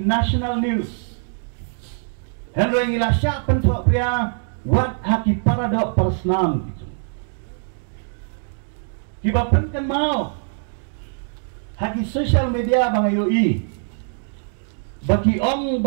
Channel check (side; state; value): left; silent; 64 dB below the other